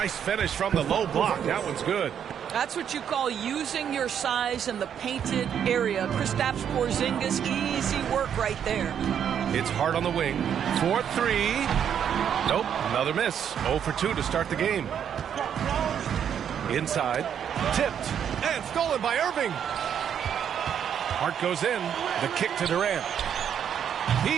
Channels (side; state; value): left; quieter; 8.7 dB